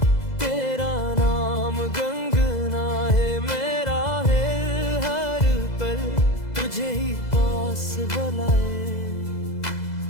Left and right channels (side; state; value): right; late; 2.0 ms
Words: तेरा नाम गुनगुनाए मेरा है हर पल तुझे ही पास बुलाए